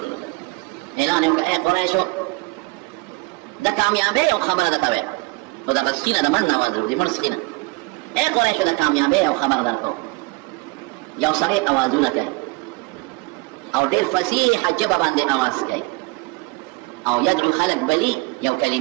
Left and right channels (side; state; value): left; quieter; 25.7 dB